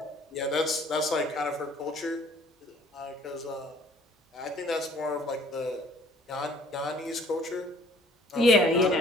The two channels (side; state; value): both; normal; correlation 0.56